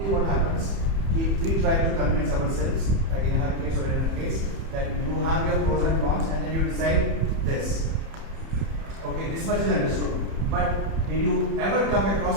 normally what happens, we try to convince ourselves, like in her case or in her case, that you have your pros and cons and then you decide this. Okay, this much is understood. But did you ever come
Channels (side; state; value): left; late; 30 ms